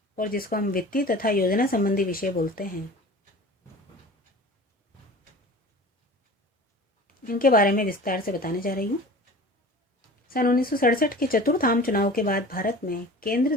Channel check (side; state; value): both; normal; correlation 0.40